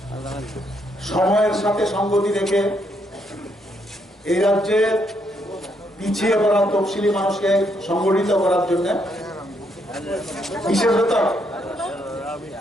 সময়ের সাথে সঙ্গতি রেখে এই রাজ্যে পিছিয়ে পড়া তফসিলি মানুষকে সংগঠিত করার জন্য বিশেষত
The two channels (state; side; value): normal; both; correlation 0.75